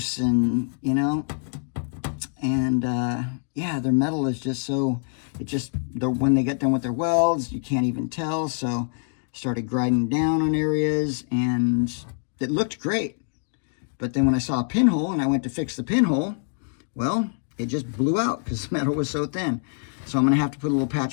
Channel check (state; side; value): silent; right; 62 dB below the other